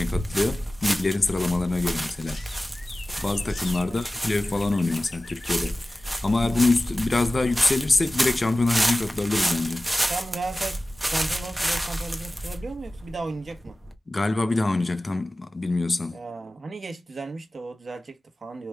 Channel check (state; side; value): normal; both; correlation 0.96